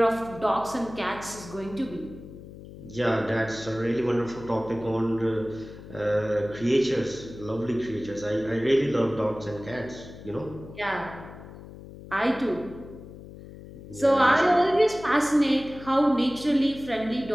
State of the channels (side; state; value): left; noise; hum, 15 dB below the sound